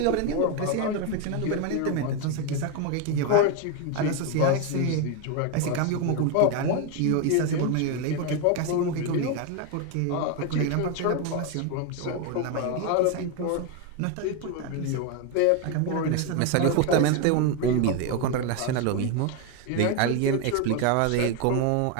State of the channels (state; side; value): different; both; correlation 0.02